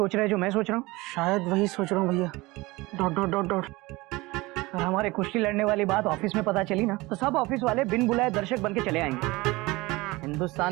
रहा है जो मैं सोच रहा हूँ? शायद वही सोच रहा हूँ भैया। Dot dot dot dot. अगर हमारे कुश्ती लड़ने वाली बात ऑफिस में पता चली ना तो सब ऑफिस वाले बिन बुलाए दर्शक बन के चले आएंगे। हिंदुस्तान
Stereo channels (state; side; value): quieter; left; 21.9 dB